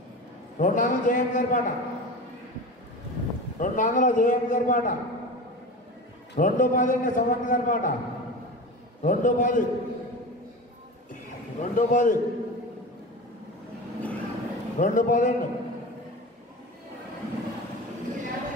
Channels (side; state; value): both; normal; correlation 0.30